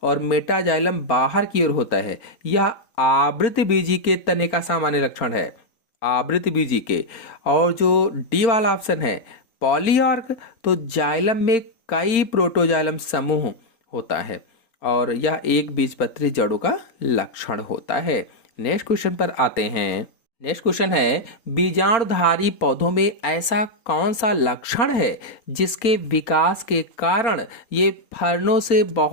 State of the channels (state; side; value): late; right; 3.9 ms